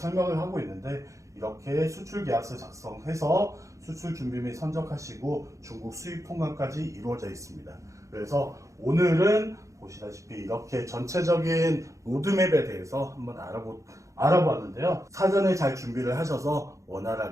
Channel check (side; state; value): left; late; 0.15 ms